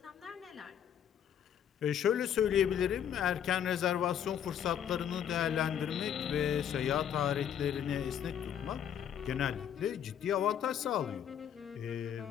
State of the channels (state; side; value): quieter; right; 9.2 dB